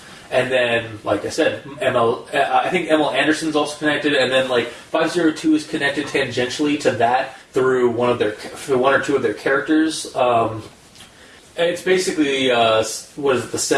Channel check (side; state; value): both; identical; correlation 1.00